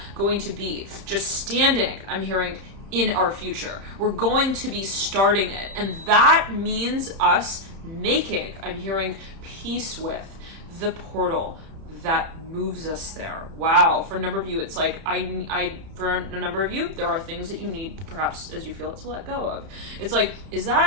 going to be just standing, I'm hearing, in our future. We're going to be starting it, and that means us making, I'm hearing, peace with the portal that moves us there. Wow. For a number of you, it's like, for a number of you, there are things that you need, perhaps as you feel it, to let go of. It's like, is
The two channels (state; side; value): late; left; 31 ms